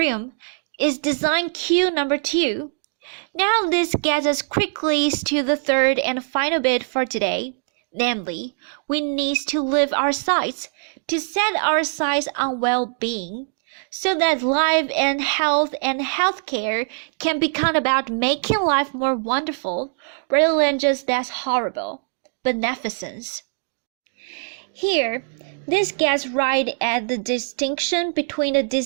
is design cue number 2. Now this gets us quickly to the third and final bit for today, namely, we need to live our sights, to set our sights on well-being, so that life and healthcare can become about making life more wonderful rather than just less horrible. Beneficence. Here, this gets right at the distinction between the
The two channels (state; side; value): silent; left; digital silence